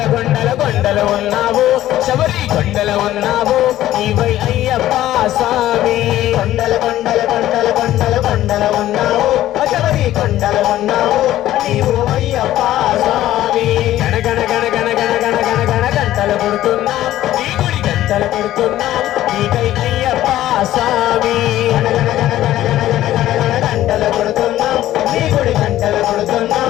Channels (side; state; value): right; quieter; 13.8 dB